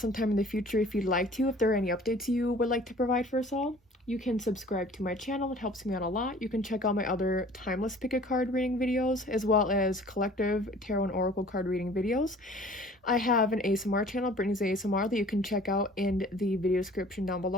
sometime in the future if you'd like to. If there are any updates you would like to provide for us all, you can subscribe to my channel. It helps me out a lot. You can check out my other timeless pick a card reading videos, as well as collective tarot and oracle card reading videos. I have an ASMR channel, Brittney's ASMR, that you can check out in the video description down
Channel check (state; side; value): normal; both; correlation 0.49